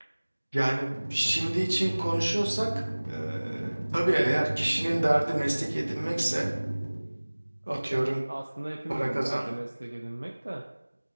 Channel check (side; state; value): both; inverted; correlation -1.00